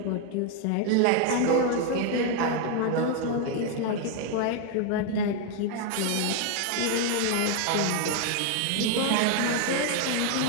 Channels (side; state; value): both; different; correlation 0.01